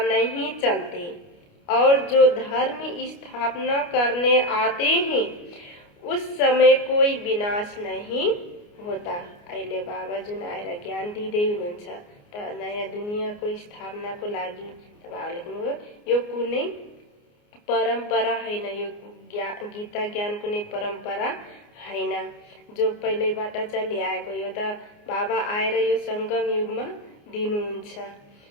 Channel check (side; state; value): right; late; 29 ms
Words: नहीं चलते, और जो धर्म स्थापना करने आते हैं उस समय कोई विनाश नहीं होता। अहिले बाबा जुन आएर ज्ञान दिँदै हुनुहुन्छ त नयाँ दुनियाँको स्थापनाको लागि त बाबाले भन्नुभयो यो कुनै परम्परा होइन, यो गीता ज्ञान कुनै परम्परा होइन, जो पहिल्यैबाट चलिआएको। यो त बाबा आएर यो संगम युगमा दिनुहुन्छ।